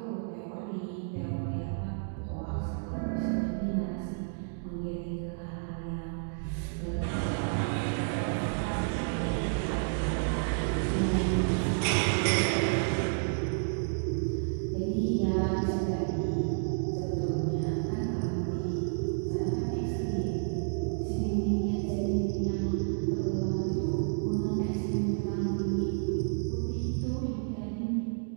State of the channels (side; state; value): left; silent; digital silence